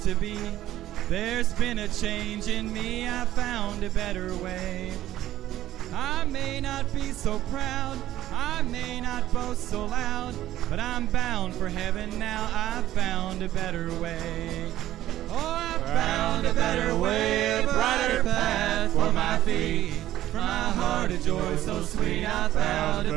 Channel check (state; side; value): quieter; left; 13.6 dB